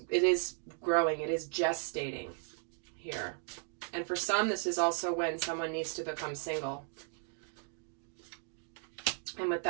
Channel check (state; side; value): silent; left; 54 dB below the other